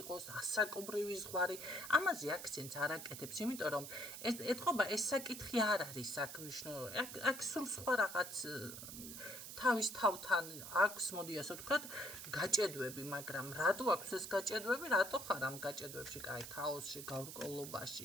იყოს ასაკობრივი ზღვარი, ამაზე აქცენტს არ აკეთებს, იმიტომ რომ ეთყობა ეს საკითხი არ არის აქ მნიშვნელოვანი. აქ სულ სხვა რაღაც თავის თავთან აქვს, მოდი ასე ვთქვათ, გაჭედვები, მაგრამ რატო აქვს ეს გაჭედვები, რატო ხარ ამ გაჭედვებში, კაი, ქაოსში,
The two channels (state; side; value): noise; right; hiss, 10 dB below the sound